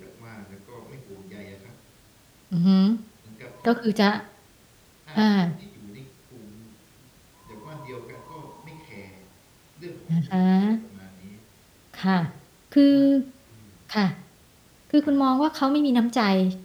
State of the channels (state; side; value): identical; both; correlation 1.00